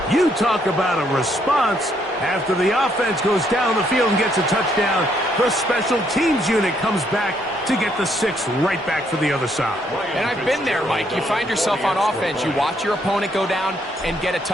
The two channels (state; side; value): normal; both; correlation 0.71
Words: You talk about a response. After the offense goes down the field and gets a touchdown, the special teams unit comes back to get the 6 right back for the other side. And I've been there, Mike. You find yourself on offense, you watch your opponent go down and get a